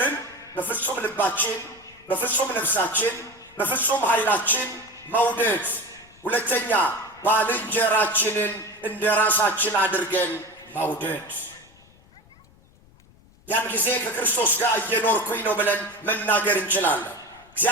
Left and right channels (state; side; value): noise; left; rumble, 28 dB below the sound